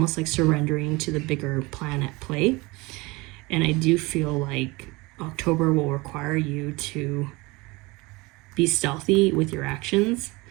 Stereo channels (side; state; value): left; quieter; 23.7 dB